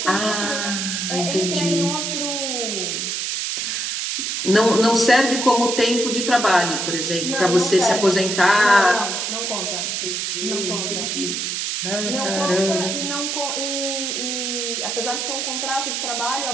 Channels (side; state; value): right; noise; hiss, 2 dB below the sound